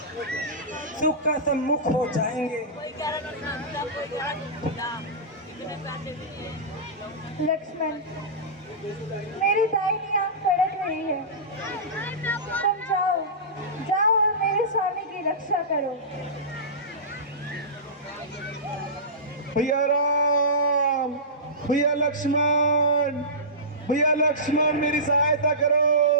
सुख का सम्मुख हो जाएंगे। लक्ष्मण, मेरी दाहिनी आंख फड़क रही है। तुम जाओ और मेरे स्वामी की रक्षा करो। भैया राम, भैया लक्ष्मण, भैया लक्ष्मण, मेरी सहायता करो।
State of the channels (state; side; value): normal; both; correlation -0.20